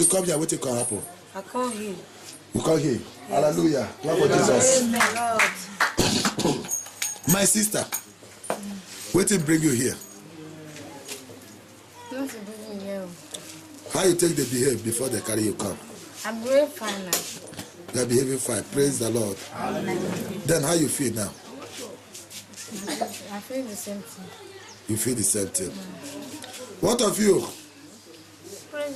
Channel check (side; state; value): both; identical; correlation 1.00